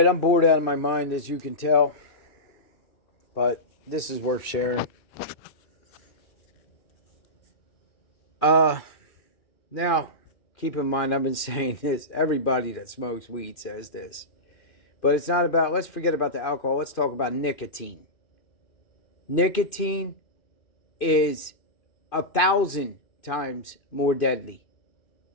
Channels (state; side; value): late; right; 2.5 ms